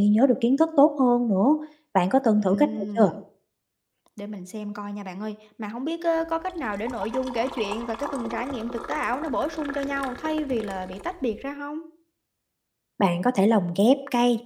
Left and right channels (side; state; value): both; identical; correlation 1.00